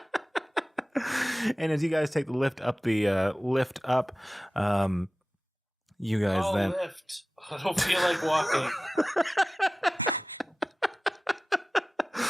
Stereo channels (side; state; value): both; normal; correlation 0.96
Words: And as you guys take the lift up, you guys then Lift. I don't feel like walking.